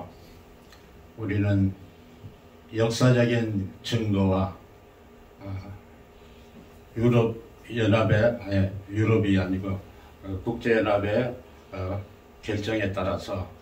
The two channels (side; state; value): both; identical; correlation 1.00